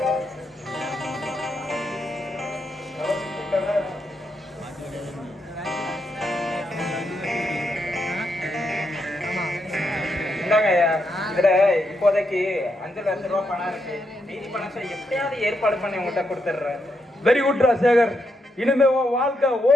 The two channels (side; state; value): both; normal; correlation 0.81